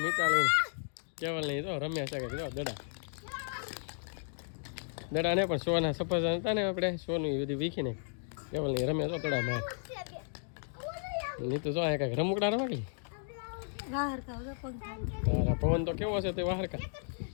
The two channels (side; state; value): right; silent; digital silence